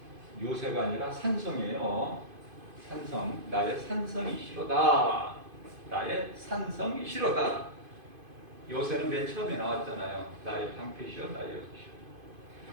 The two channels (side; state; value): left; late; 2.5 ms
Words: 요새가 아니라 산성이에요. 산성. 나의 산성이시로다. 나의 산성이시로다. 요새는 맨 처음에 나왔잖아요. 나의 방패시오. 나의 요새시오.